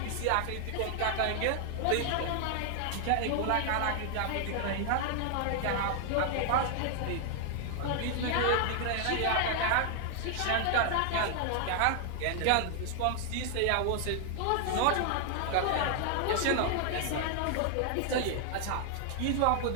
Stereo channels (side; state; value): both; different; correlation 0.00